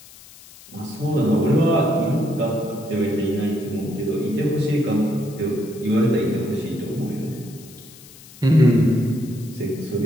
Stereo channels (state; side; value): noise; left; hiss, 21 dB below the sound